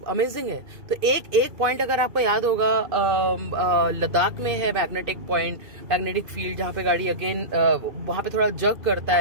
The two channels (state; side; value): late; left; 2.5 ms